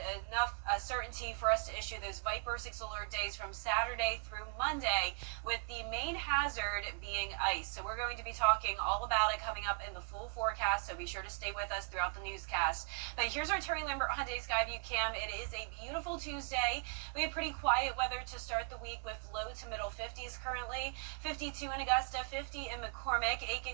enough certainty for us to issue those Viper 6 alert days from Saturday through Monday, with the main hazard being ice. So we're going to be talking all about it coming up in the full forecast, so be sure to stay with us throughout the newscast. But here's our Terry Lambert Hyundai Skyview cam. It is a beautiful Tuesday. We have pretty quiet weather to start the week with low to middle 50s currently. 52 in Augusta, 50 in McCormick.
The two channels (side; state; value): left; quieter; 36.7 dB